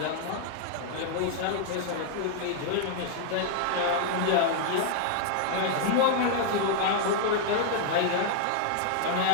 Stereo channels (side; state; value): both; different; correlation 0.00